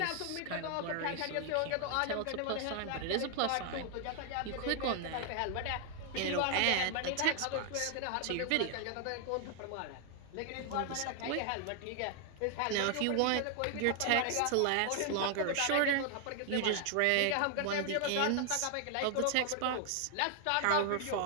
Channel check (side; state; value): both; different; correlation 0.00